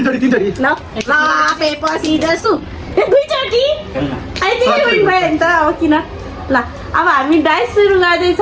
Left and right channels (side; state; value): both; identical; correlation 1.00